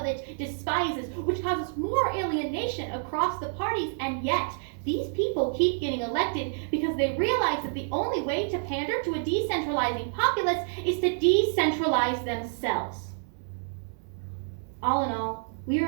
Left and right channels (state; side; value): silent; left; 59 dB below the other